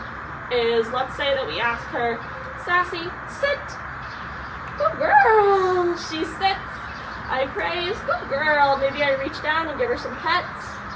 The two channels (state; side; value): identical; both; correlation 1.00